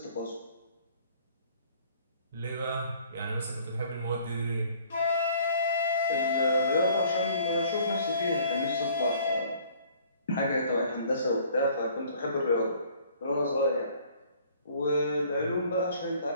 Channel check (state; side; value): inverted; both; correlation -0.56